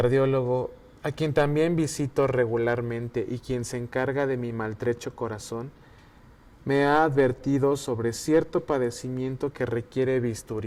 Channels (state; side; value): identical; both; correlation 1.00